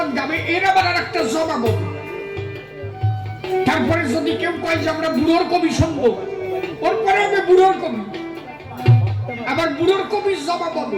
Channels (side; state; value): both; identical; correlation 1.00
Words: গাবে এর আবার আর একটা জবাব হবে। তারপরে যদি কেউ কয় যে আমরা বুড়োর কবি শুনবো, ওর পরে হবে বুড়োর কবি, আবার বুড়োর কবির জবাব